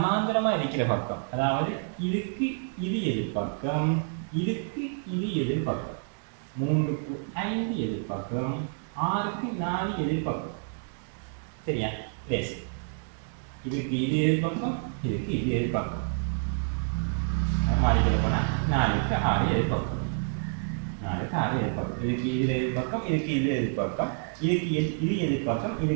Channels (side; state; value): left; silent; 59 dB below the other